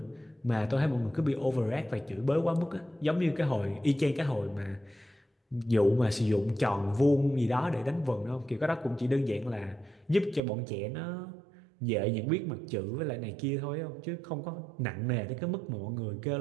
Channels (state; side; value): drops out; left; at 10.4 s